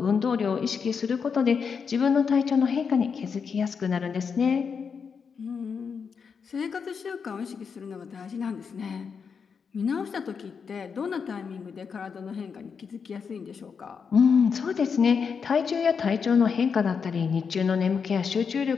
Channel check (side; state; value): right; quieter; 6.1 dB